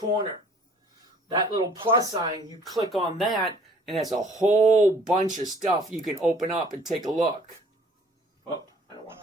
That little plus sign, you click on that, and there's a whole bunch of stuff you can open up and take a look. Oh, I don't want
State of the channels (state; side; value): normal; both; correlation 0.55